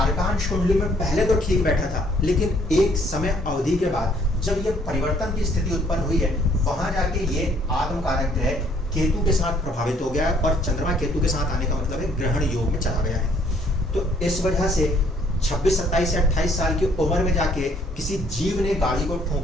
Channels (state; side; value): normal; both; correlation 0.63